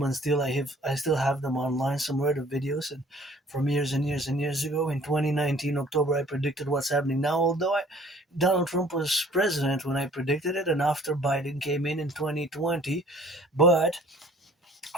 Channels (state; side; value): normal; both; correlation 0.54